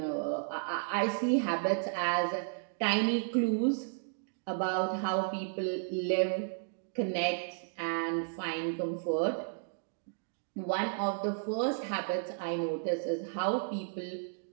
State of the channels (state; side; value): silent; left; digital silence